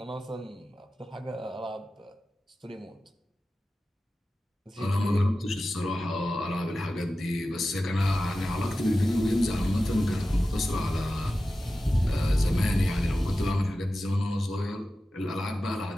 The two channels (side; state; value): both; normal; correlation 0.94